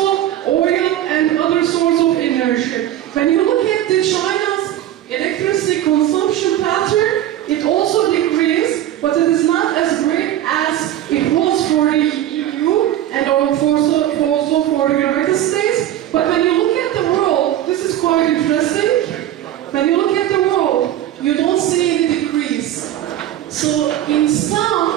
oil and other sorts of energy. When you look at the China's electricity consumption pattern, it also decreased, but it is not as great as it was for the EU and also for the United States. But when you look at the world, this is quite interesting. When you look at the world, you don't see any decrease. So in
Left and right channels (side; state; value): left; quieter; 12.3 dB